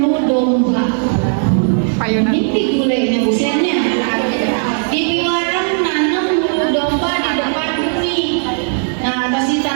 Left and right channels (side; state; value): left; silent; 65 dB below the other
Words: domba. Ini gulenya busiannya. Di Piwarang nanam bulu domba di depan bumi. Nah, pas